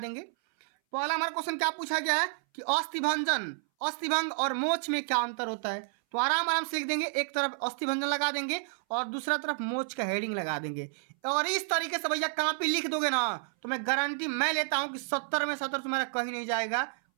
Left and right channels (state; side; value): silent; left; 58 dB below the other